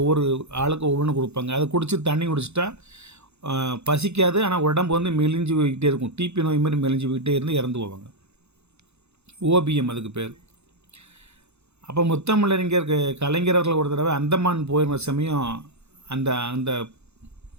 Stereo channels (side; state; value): left; late; 0.81 ms